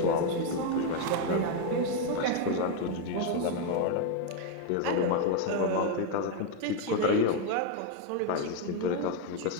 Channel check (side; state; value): both; different; correlation 0.01